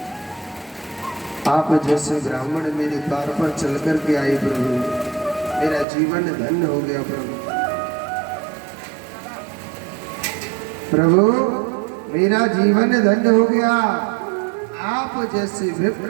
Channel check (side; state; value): left; drops out; at 5.9 s